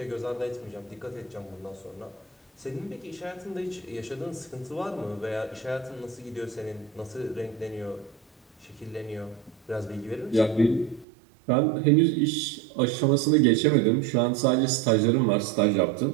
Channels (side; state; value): left; drops out; at 11.1 s